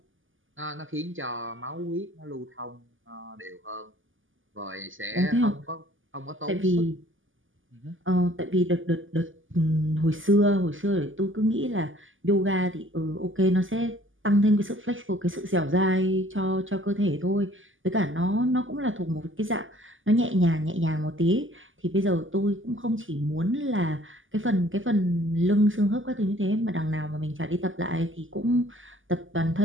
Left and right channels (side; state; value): left; late; 0.58 ms